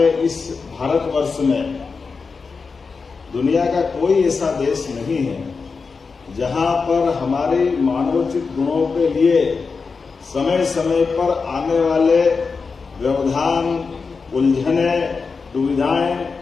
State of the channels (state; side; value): quieter; right; 4.8 dB